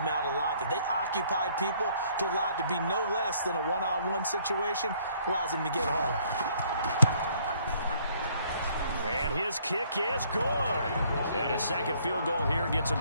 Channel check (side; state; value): both; inverted; correlation -0.63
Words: out a lot. That they occupied people to allow it to be no less than a one-on-one situation, allows him to get home. And his kick is good. And a second field goal here gets him